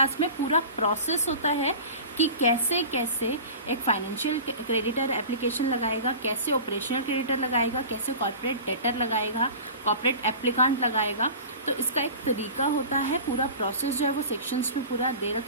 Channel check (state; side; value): inverted; both; correlation -0.36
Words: में। पूरा प्रोसेस होता है कि कैसे कैसे एक फाइनेंशियल क्रेडिटर एप्लीकेशन लगाएगा, कैसे ऑपरेशनल क्रेडिटर लगाएगा, कैसे कॉर्पोरेट डेटर लगाएगा, कॉर्पोरेट एप्लीकांट लगाएगा। तो इसका एक तरीका होता है, पूरा प्रोसेस जो है वो सेक्शंस में पूरा दे